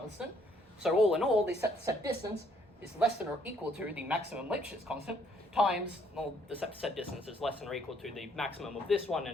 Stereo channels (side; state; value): both; normal; correlation 0.66